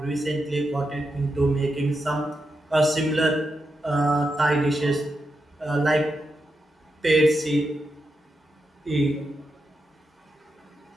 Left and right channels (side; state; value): both; normal; correlation 0.86